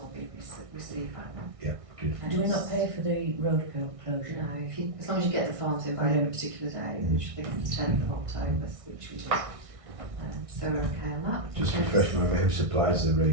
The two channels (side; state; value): left; late; 1.6 ms